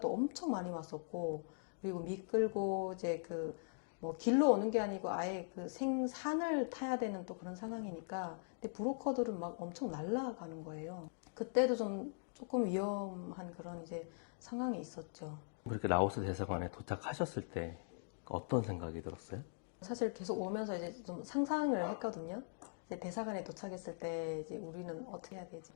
엄청 많이 왔었고, 그리고 미끌고 이제 그 뭐 길로 오는 게 아니고 아예 그 생산을 타야 되는 또 그런 상황이니까, 근데 브로커들은 막 엄청 날아가는 거예요. 그때도 좀 조금 위험한 그런 이제 상황이 있었죠. 그렇게 라오스 대사관에 도착하셨을 때 어떤 생각이 들었어요? 사실 계속 오면서 이제 좀 상상을 했거든요. 이제 대사관에 도착했을 때 이제 우리는 어떻게 해야 되지?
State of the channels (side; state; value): right; silent; digital silence